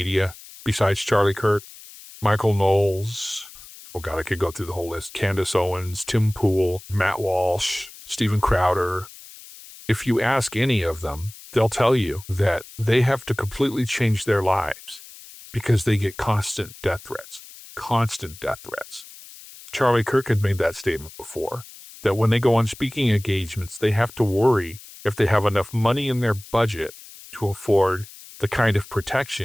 besides Charlie Kirk, Michael Knowles, oh God, I could go through the whole list, Candace Owens, Tim Pool, Matt Walsh, Steven Crowder. If you ask any of them, they'll tell you that they have to completely change their lives because they get constant death threats. Constant death threats. Charlie Kirk had made that statement before, that when they go on speaking engagements, they have to worry if they have enough money in their budget to afford the kind of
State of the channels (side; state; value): left; noise; hiss, 18 dB below the sound